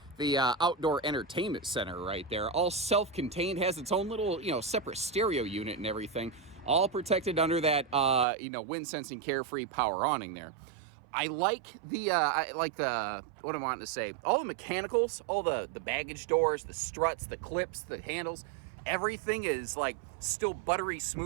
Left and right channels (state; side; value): drops out; left; at 8.2 s